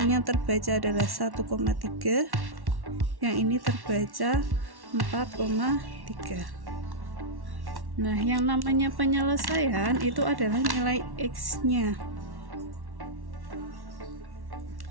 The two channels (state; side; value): late; left; 1.1 ms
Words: terbaca adalah 1,3, yang ini terbaca 4,3. Nah, yang namanya penyelesaian itu adalah nilai x-nya.